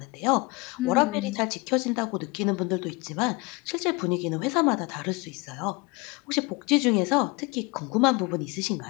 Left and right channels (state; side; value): quieter; right; 25.9 dB